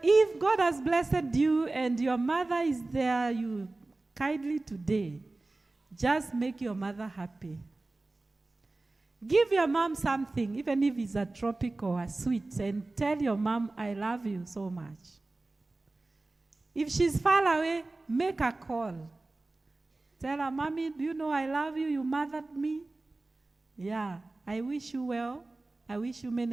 if God has blessed you and your mother is there, you kindly today, just make your mother happy. Give your mom something, even if it's a tropic or a sweet, and tell your mom, I love you so much. If she's far away, make a call. Tell her, Mommy, do you know I love you? You mothered me. Yeah, I wish you well. I wish you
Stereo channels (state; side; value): quieter; left; 3.1 dB